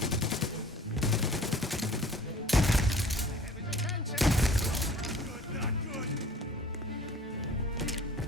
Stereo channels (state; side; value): normal; both; correlation 0.48